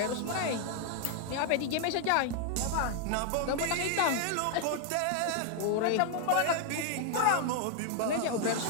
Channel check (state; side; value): different; both; correlation 0.00